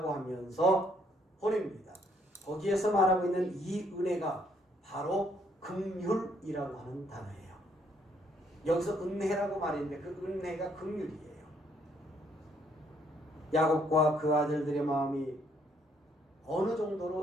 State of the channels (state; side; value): normal; both; correlation 0.68